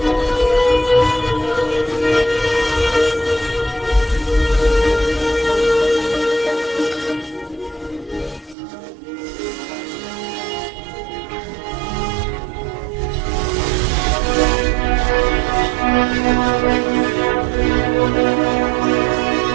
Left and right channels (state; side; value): drops out; left; at 8.6 s